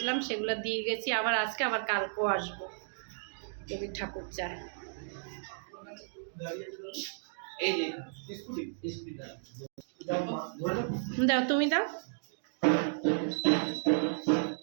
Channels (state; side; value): silent; left; digital silence